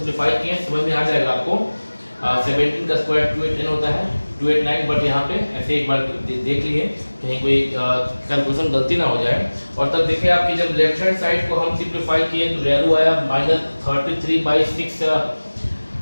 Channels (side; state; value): both; inverted; correlation -1.00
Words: किए, समझ में आ जाएगा आपको। 17 का स्क्वायर 289 होता है 289, बट यहाँ पे ऐसे एक बार देख लिए कहीं कोई कैलकुलेशन गलती ना हो जाए। और तब देखिए आपकी जब लेफ्ट हैंड साइड को हम सिंप्लीफाई किए तो वैल्यू आया